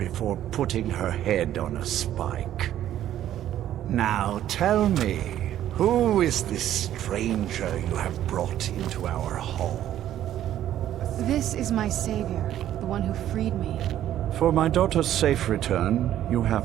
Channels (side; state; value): left; quieter; 11.9 dB